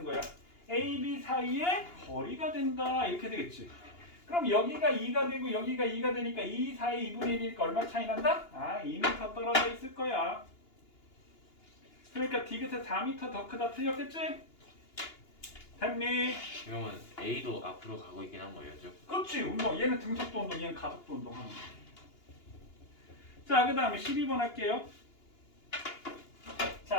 거야? A, B 사이의 거리가 된다. 이렇게 되겠지. 그럼 여기가 2가 되고 여기가 2가 되니까 2 사이 2분의 1이니까 얼마 차이 난다? 2m 떨어져 있을 거야. 그러니까 디귿에 4m 더 크다. 틀렸겠지? 됐니? 그러면 A도 앞으로 가고 있긴 한 거예요, 죠? 그렇지. 운동. 얘는 등속도 운동, 얘는 가속도 운동 하는 거야. 자, 그 다음에 12번 할게요.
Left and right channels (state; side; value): late; right; 2.8 ms